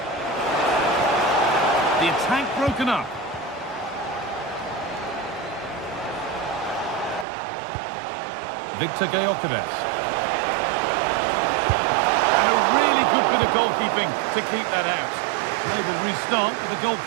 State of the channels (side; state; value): left; drops out; at 7.2 s